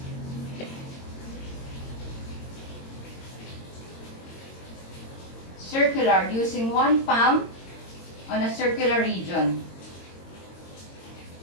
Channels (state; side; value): late; right; 22 ms